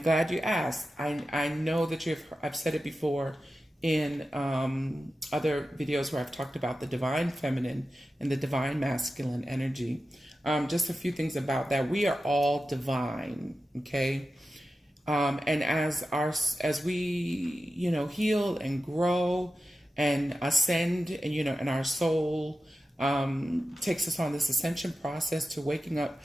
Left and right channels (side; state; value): both; normal; correlation 0.92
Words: you asked. I know that I've said it before in other videos where I've talked about the divine feminine and the divine masculine energy. Just a few things about that. We are all divine, okay? And as we heal and grow and ascend, and our soul takes us on this ascension process to waking up